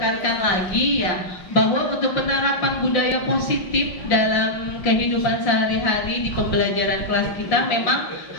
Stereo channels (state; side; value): late; right; 5.6 ms